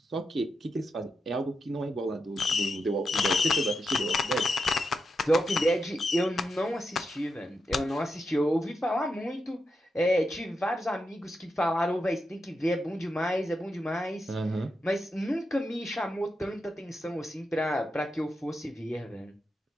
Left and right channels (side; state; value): both; normal; correlation 0.86